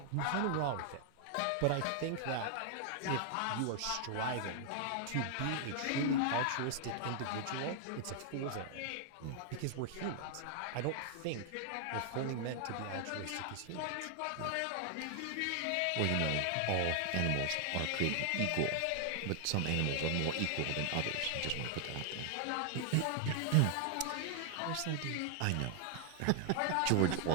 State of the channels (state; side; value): different; both; correlation 0.00